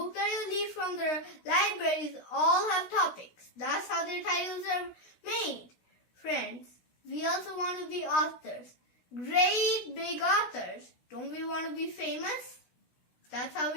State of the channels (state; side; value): late; right; 16 ms